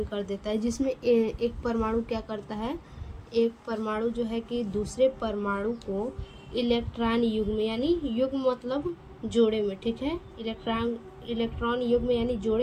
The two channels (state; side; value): identical; both; correlation 1.00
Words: कर देता है। जिसमें एक परमाणु क्या करता है, एक परमाणु जो है कि दूसरे परमाणु को इलेक्ट्रॉन युग्म, यानी युग्म मतलब जोड़े में, ठीक है, इलेक्ट्रॉन युग्म यानी